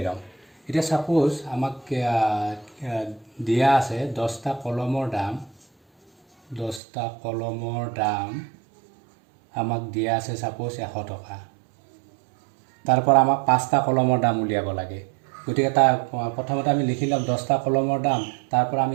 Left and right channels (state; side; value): drops out; left; at 6.8 s